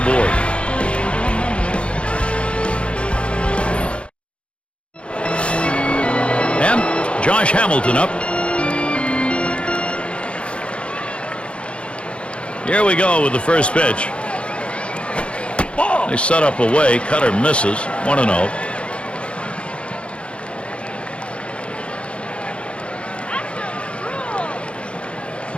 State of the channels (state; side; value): late; right; 0.059 ms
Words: board. And Josh Hamilton up. Here we go with the first pitch. They set up away. Cutter misses. 1-0.